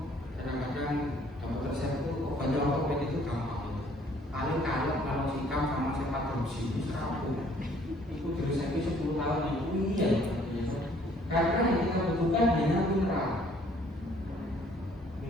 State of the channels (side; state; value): both; normal; correlation 0.60